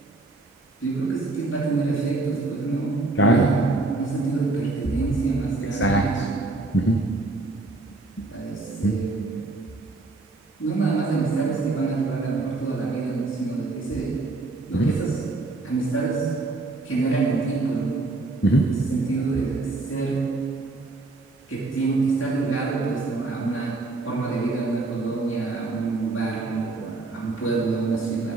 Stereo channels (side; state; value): left; quieter; 3.3 dB